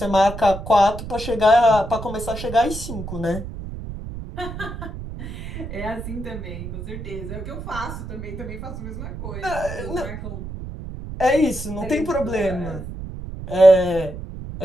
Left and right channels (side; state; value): right; noise; rumble, 9 dB below the sound